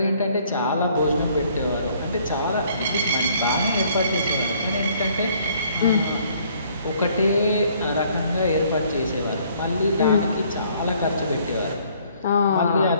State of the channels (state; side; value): inverted; both; correlation -0.62